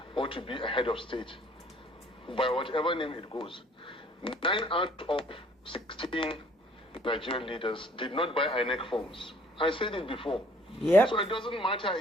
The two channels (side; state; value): both; normal; correlation 0.57